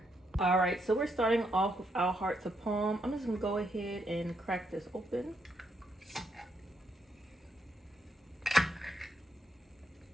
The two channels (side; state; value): both; normal; correlation 0.78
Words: All right, so we're starting off with our hearts of palm. I'm just gonna go ahead and crack this open.